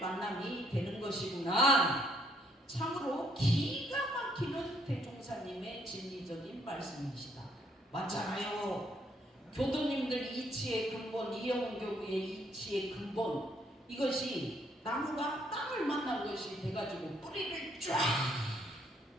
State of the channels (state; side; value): normal; both; correlation 0.69